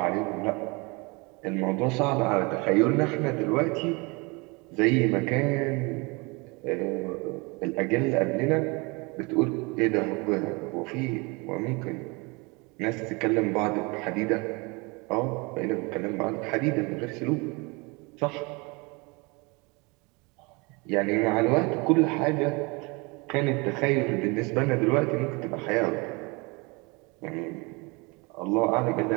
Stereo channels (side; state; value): left; quieter; 27.9 dB